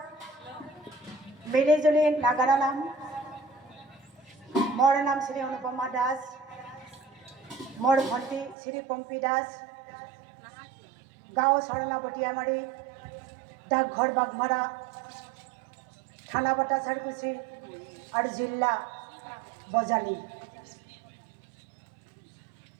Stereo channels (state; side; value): drops out; left; at 8.6 s